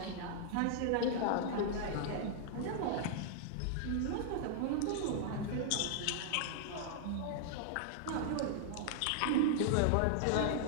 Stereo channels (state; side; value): different; both; correlation -0.01